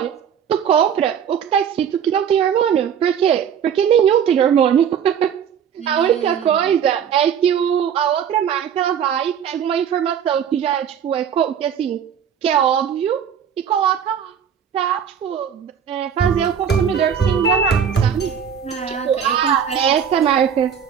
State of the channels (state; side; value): quieter; left; 8.1 dB